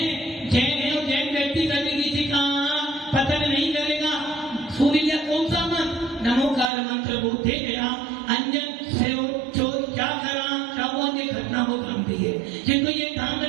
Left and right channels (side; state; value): left; drops out; at 6.7 s